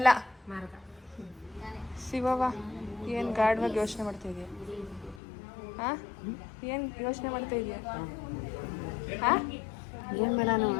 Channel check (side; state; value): right; drops out; at 5.2 s